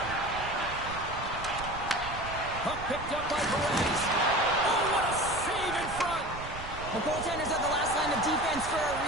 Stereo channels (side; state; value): right; noise; rumble, 11 dB below the sound